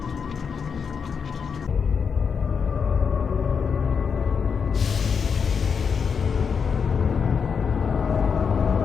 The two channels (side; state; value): right; quieter; 6.2 dB